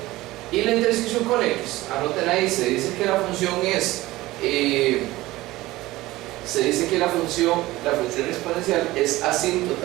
Y la intersección con X, anoten ahí, se dice que la función es la función exponencial es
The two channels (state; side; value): quieter; left; 18.1 dB